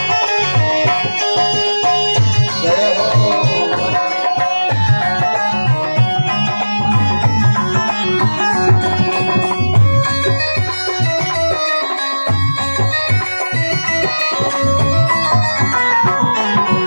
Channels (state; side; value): inverted; both; correlation -1.00